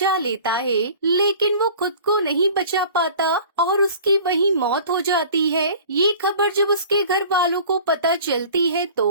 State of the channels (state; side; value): inverted; both; correlation -0.45